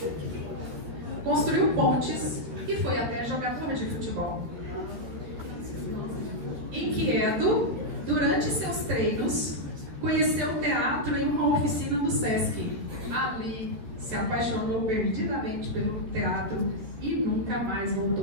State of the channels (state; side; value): late; left; 13 ms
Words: construiu pontes e foi até jogador de futebol. Inquieto, durante seus treinos, conheceu o teatro em uma oficina do Sesc. Ali, se apaixonou perdidamente pelo teatro e nunca nunca mais